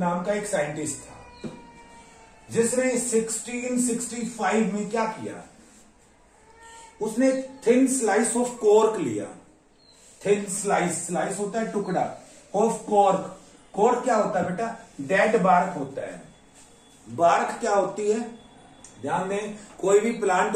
का एक साइंटिस्ट था, जिसने 1665 में क्या किया, उसने थिन स्लाइस ऑफ कॉर्क लिया। थिन स्लाइस होता है टुकड़ा, ऑफ कॉर्क। कॉर्क क्या होता है बेटा? डेड बार्क होता है। बार्क क्या होती है? ध्यान दें, कोई भी प्लांट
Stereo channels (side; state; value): both; identical; correlation 1.00